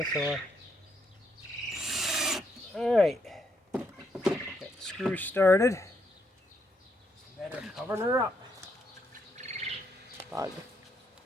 Alright. Got the screw started. Better cover her up. Bug.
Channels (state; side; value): normal; both; correlation 0.76